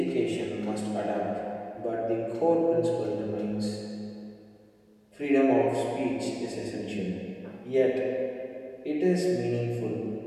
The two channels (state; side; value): identical; both; correlation 1.00